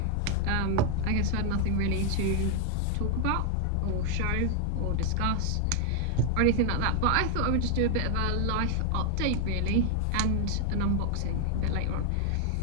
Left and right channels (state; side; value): different; both; correlation 0.01